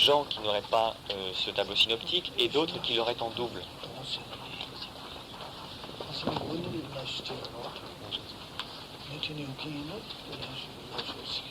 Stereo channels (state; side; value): identical; both; correlation 1.00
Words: qui n'auraient pas ce tableau synoptique et d'autres qui l'auraient en double?